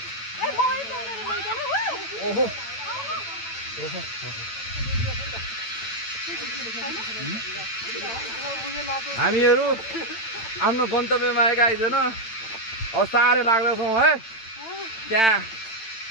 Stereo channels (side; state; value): right; late; 8.9 ms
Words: मोबाइल फोनहरु लैजानु ओहो हामीहरू आफ्नो गन्तव्यमा आएका आइजन अब साह्रै लाग्दैछौँ है त्यहाँ